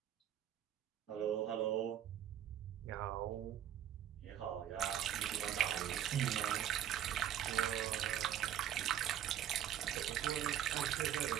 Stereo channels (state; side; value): quieter; left; 10.7 dB